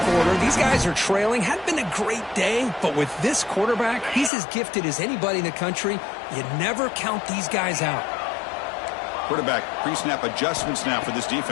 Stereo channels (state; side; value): drops out; right; at 4.3 s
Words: These guys are trailing. Hadn't been a great day, but with this quarterback, he's as gifted as anybody in the country. You never count these guys out. Quarterback pre-snap adjustments now for this